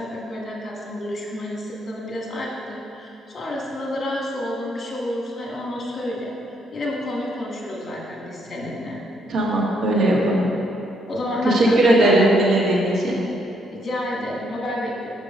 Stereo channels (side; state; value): both; normal; correlation 0.73